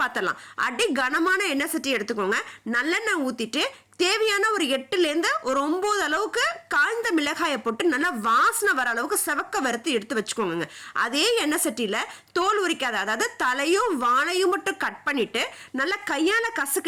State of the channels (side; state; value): both; identical; correlation 1.00